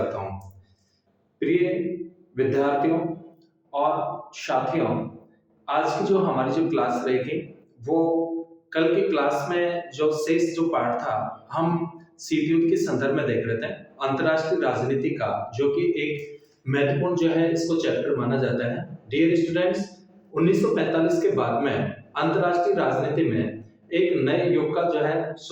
हूं। प्रिय विद्यार्थियों और साथियों, आज की जो हमारी जो क्लास रहेगी वो कल की क्लास में जो शेष जो पार्ट था हम सीटीयूट के संदर्भ में देख रहे थे। अंतर्राष्ट्रीय राजनीति का जो कि एक महत्वपूर्ण जो है इसको चैप्टर माना जाता है। डियर स्टूडेंट्स, 1945 के बाद में अंतर्राष्ट्रीय राजनीति में एक नए युग का जो है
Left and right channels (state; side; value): identical; both; correlation 1.00